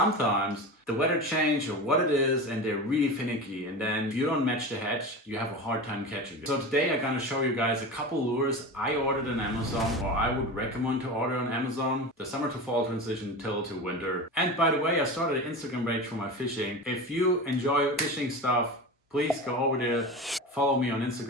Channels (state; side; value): normal; both; correlation 0.28